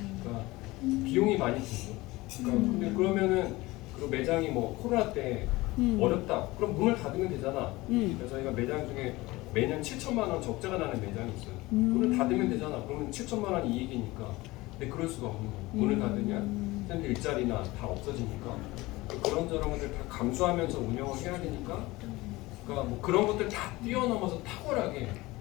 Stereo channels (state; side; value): quieter; right; 20.4 dB